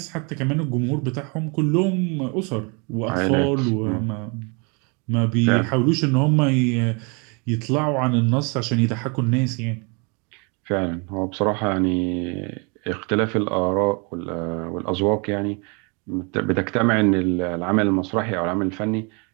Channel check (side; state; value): left; quieter; 33.1 dB